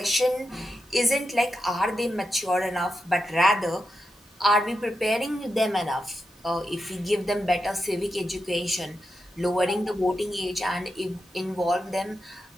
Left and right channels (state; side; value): normal; both; correlation 0.87